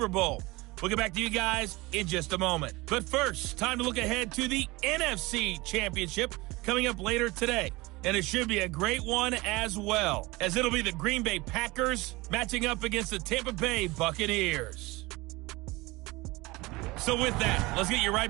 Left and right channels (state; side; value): quieter; left; 22.2 dB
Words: Bowl. We'll get back to you guys in just a moment. But first, time to look ahead to the NFC Championship coming up later today. And it should be a great one as well, as it'll be the Green Bay Packers matching up against the Tampa Bay Buccaneers. So with that, let's get you